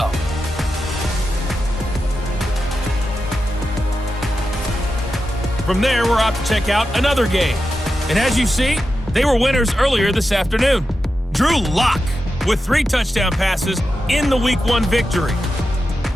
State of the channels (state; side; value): normal; both; correlation 0.90